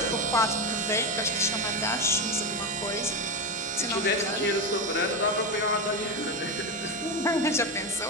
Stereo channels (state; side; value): normal; both; correlation 0.14